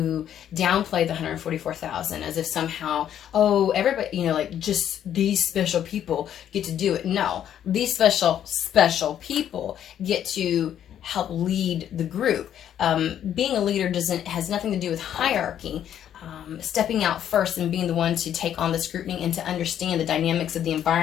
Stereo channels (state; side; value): quieter; right; 10.2 dB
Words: downplay the 144,000 as if somehow, oh, everybody, you know, like just these special people get to do it. No, these special people get to help lead the group. Being a leader has nothing to do with hierarchy. Stepping out first and being the one to take on the scrutiny and to understand the dynamics of the